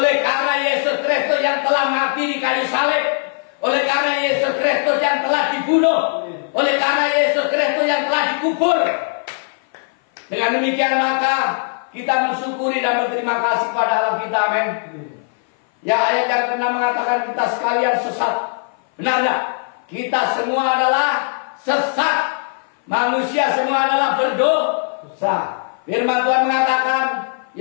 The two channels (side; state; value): right; silent; 58 dB below the other